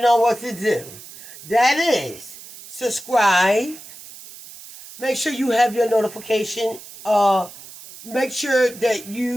what to do. That is, subscribe. Make sure you have your notification. Make sure that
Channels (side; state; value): right; noise; hiss, 17 dB below the sound